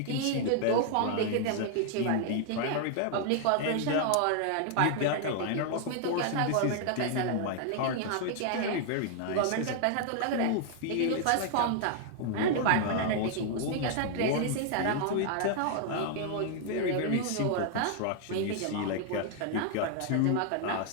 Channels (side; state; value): both; different; correlation 0.00